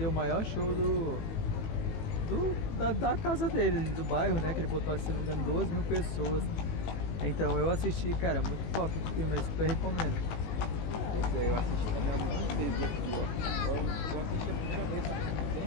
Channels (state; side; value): late; right; 19 ms